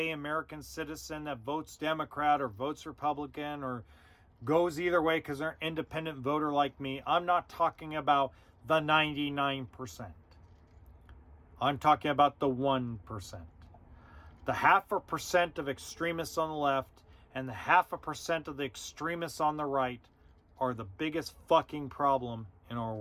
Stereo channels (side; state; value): both; identical; correlation 1.00